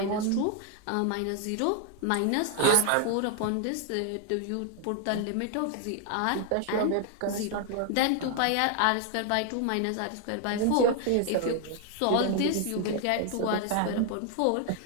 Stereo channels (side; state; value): both; different; correlation 0.00